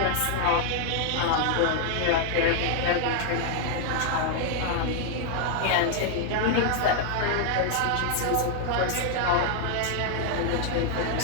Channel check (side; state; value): both; different; correlation 0.00